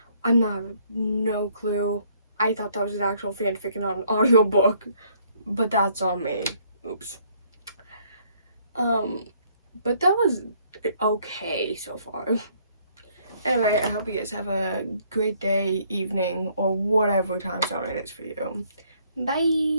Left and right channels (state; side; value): inverted; both; correlation -0.65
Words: I'm not, no clue. I thought that was an actual fanfic and not an audiobook, but that's on me. Oops. But that was okay so far. Anyway, I hope you guys have a great day, evening, or whatever time zone it is for you.